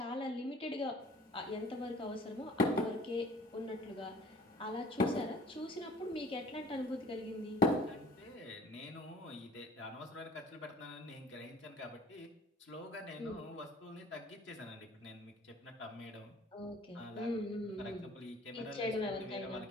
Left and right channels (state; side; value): normal; both; correlation 0.50